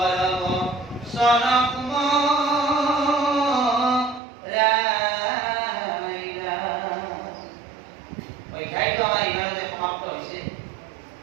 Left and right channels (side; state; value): left; drops out; at 4.2 s